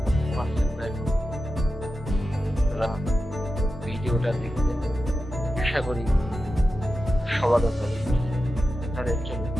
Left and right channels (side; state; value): both; normal; correlation 0.91